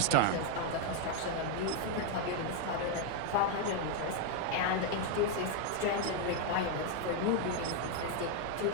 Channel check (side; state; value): both; different; correlation 0.01